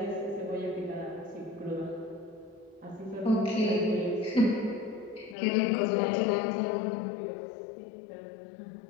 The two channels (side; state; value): right; drops out; at 5.4 s